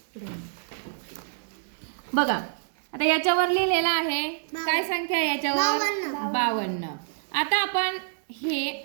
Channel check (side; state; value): left; silent; digital silence